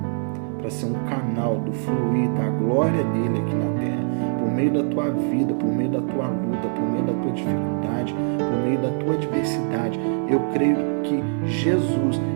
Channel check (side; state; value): left; silent; 63 dB below the other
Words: para ser um canal do fluir da glória dele aqui na terra, por meio da tua vida, por meio da tua luta, por meio da tua dificuldade, por meio da tua adversidade. Eu creio que Jesus,